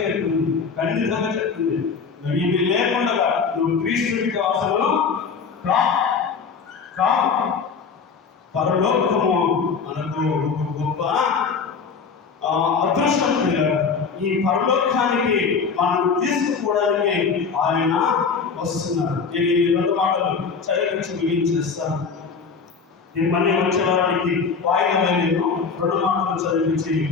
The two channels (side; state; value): right; quieter; 5.5 dB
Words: చెప్తుంది. నువ్వు ఇవి లేకుండా నువ్వు క్రీస్తుడికి అసలు కావు. పరలోకము మనకు గొప్ప అదృష్టం. ఈ పరలోకానికి మనం తీసుకుపోవడానికి ఆయన వస్తున్నారు. నేను ఈ 2 మాటలు చదివించి ముగించేస్తాను. మళ్ళీ వచ్చే వారికి వాయిదా రెండు మాటలు చదివించి